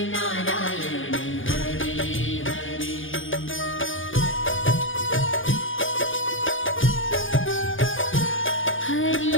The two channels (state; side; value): late; right; 0.58 ms